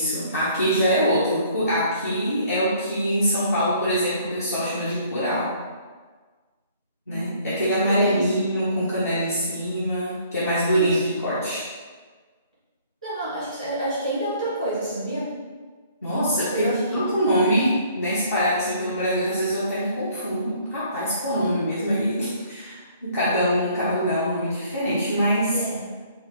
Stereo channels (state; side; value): inverted; both; correlation -0.59